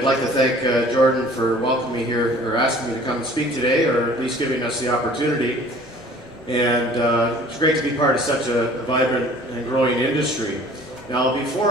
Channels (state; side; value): normal; both; correlation 0.50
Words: like to thank Jordan for welcoming me here, or asking me to come and speak today, or at least giving us the opportunity. And it's great to be part of such a vibrant and growing industry. Now,